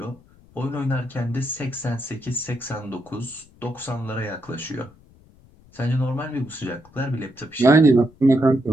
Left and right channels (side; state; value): left; noise; rumble, 27 dB below the sound